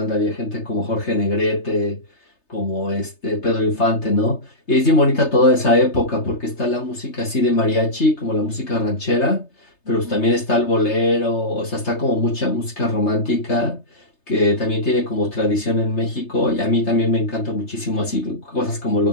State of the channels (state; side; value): late; right; 3.3 ms